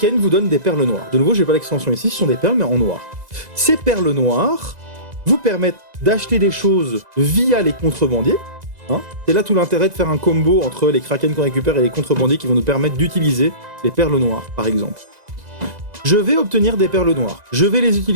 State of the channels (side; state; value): left; late; 2.0 ms